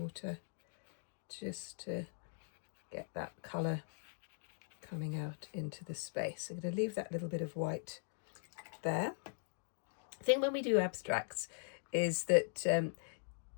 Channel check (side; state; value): right; silent; digital silence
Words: water just to get that colour coming out into the space. I'm going to leave that little bit of white there. The thing when we do abstracts is that